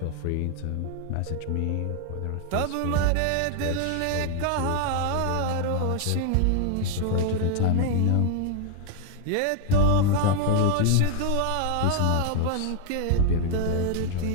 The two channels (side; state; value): both; different; correlation 0.00